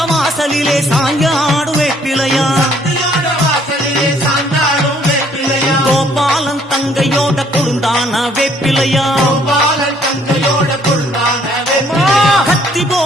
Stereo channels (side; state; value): both; normal; correlation 0.63